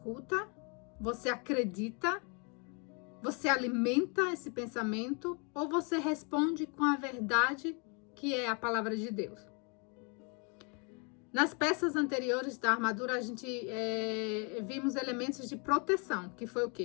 Você acredita? Você alimenta esse pensamento? Ou você responde com a verdade que é a palavra de Deus? Nas peças anteriores da armadura, a gente vimos elementos de proteção, que foi o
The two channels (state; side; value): quieter; right; 34.6 dB